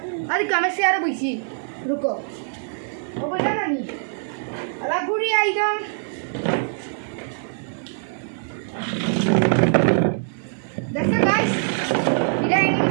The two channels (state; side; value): silent; left; 63 dB below the other